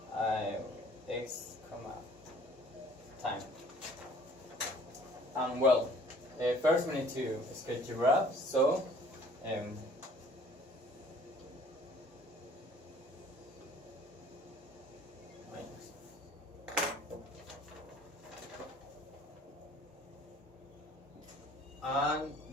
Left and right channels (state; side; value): normal; both; correlation 0.53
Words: x, time. And well, first we need to sketch the graph. So and